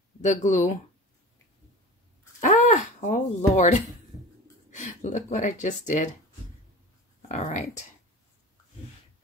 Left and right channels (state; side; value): normal; both; correlation 0.34